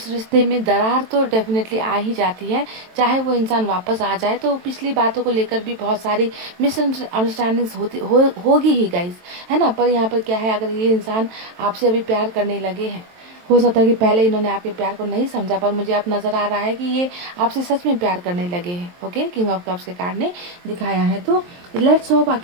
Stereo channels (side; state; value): left; late; 23 ms